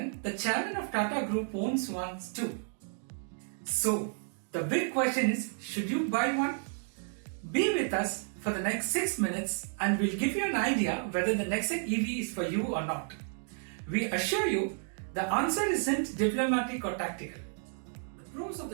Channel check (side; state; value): left; silent; 56 dB below the other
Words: the chairman of Tata Group, owns one too. So, the big question is, should you buy one? Be with us for the next 6 minutes and we'll give you an idea whether the Nexon EV is for you or not. We assure you, the answer isn't diplomatic or tactical. The pros of the